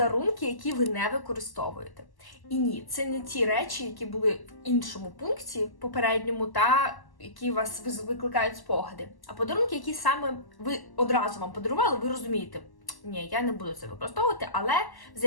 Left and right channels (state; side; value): late; right; 1.1 ms